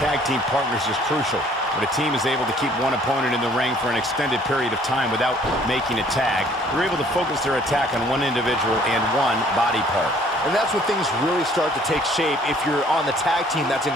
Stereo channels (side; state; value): both; normal; correlation 0.58